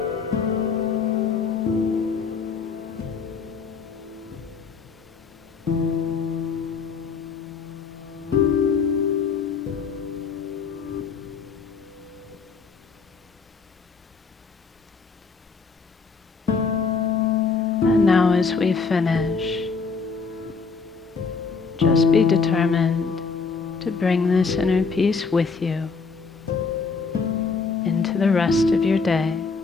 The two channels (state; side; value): quieter; right; 5.0 dB